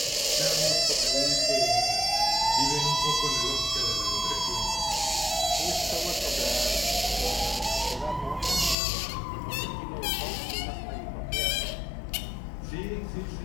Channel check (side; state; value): right; drops out; at 8.8 s